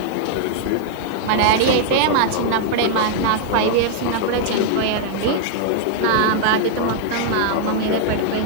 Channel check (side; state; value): both; different; correlation -0.01